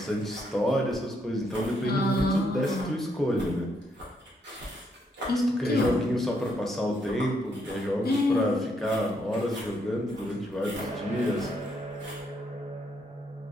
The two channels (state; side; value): normal; both; correlation 0.75